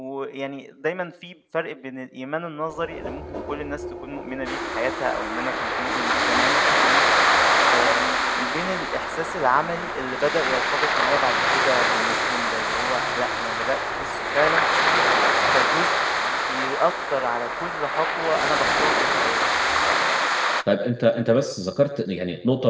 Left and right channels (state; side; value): identical; both; correlation 1.00